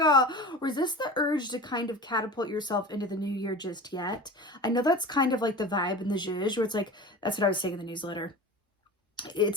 Resist the urge to kind of catapult yourself into the new year just yet. I know that's kind of like the vibe in the zhuzh, where it's like, that's what I was saying in the newsletter.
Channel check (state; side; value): normal; both; correlation 0.34